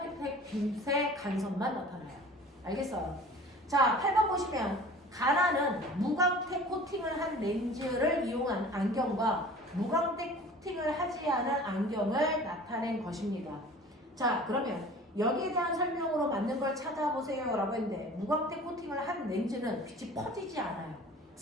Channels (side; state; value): both; normal; correlation 0.44